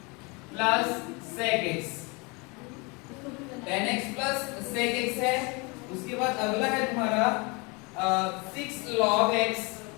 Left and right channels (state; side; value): quieter; right; 29.1 dB